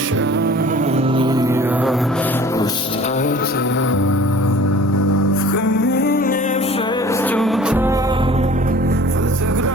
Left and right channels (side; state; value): both; normal; correlation 0.46